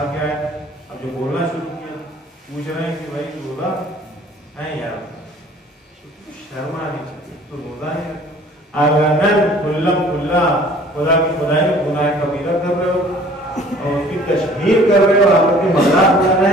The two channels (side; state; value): both; normal; correlation 0.52